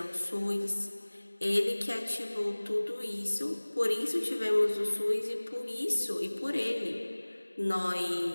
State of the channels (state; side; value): inverted; both; correlation -1.00